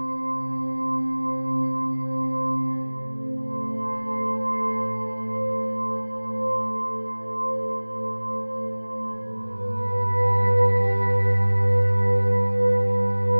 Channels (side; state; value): both; inverted; correlation -1.00